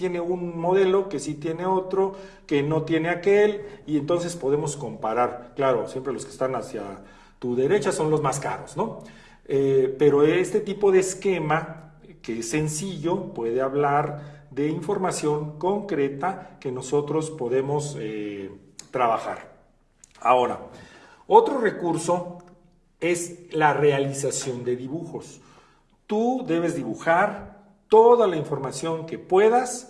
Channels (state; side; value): identical; both; correlation 1.00